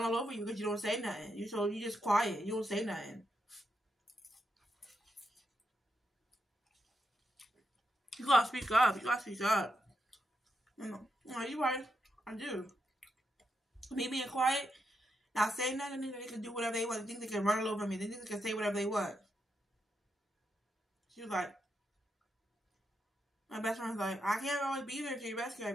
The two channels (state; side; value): normal; both; correlation 0.83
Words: all over you because you don't say nothing. So you just quiet. You don't say nothing. You gotta speak up. You gotta speak up. No, you're right. I do. Me being quiet, not saying nothing, they can do whatever they want. They think they can run all over me. They think they can say whatever they want. She was like, my best friend's like, I can't always be there to your rescue